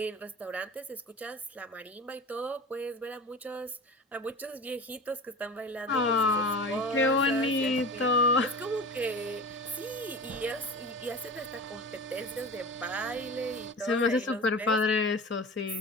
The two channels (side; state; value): both; normal; correlation 0.33